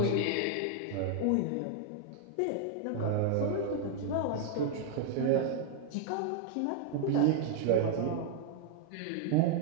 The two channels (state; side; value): different; both; correlation 0.00